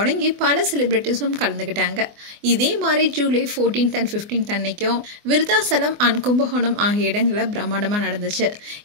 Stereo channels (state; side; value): late; left; 24 ms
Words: பல செலிபிரிட்டிஸும் கலந்துக்கிட்டாங்க. இதே மாதிரி ஜூலை 14th and 15th அன்னைக்கும் விருத்தாசலம் அண்ட் கும்பகோணம் ஆகிய இடங்களில் பிரம்மாண்டமாக நடந்துச்சு.